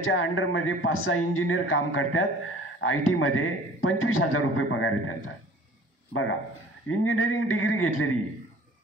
अंडरमध्ये 5-6 इंजिनियर काम करतात. IT मध्ये 25,000 रुपये पगार आहे त्यांचा. बघा, इंजिनिअरिंग डिग्री घेतलेली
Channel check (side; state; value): both; normal; correlation 0.48